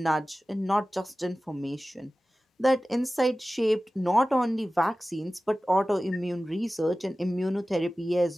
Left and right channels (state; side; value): normal; both; correlation 0.96